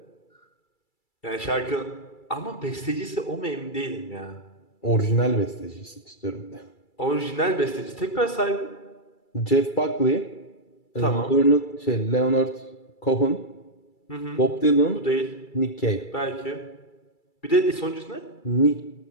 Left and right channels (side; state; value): right; late; 2.3 ms